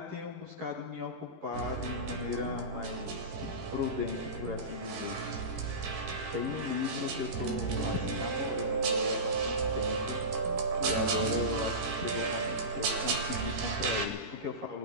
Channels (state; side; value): late; left; 13 ms